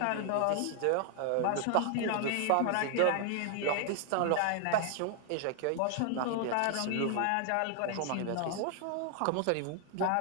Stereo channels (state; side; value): different; both; correlation 0.00